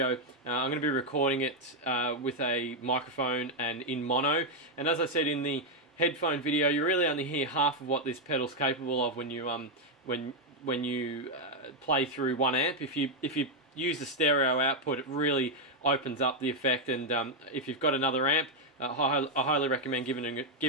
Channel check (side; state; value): both; normal; correlation 0.01